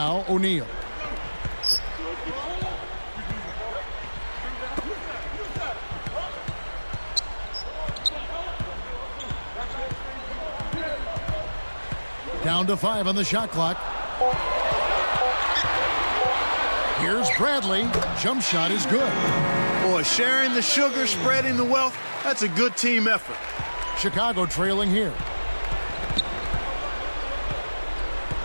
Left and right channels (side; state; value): both; inverted; correlation -1.00